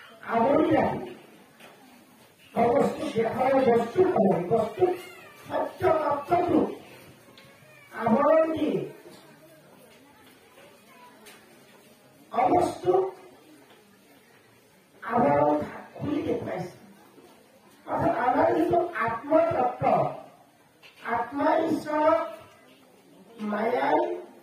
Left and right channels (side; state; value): both; identical; correlation 1.00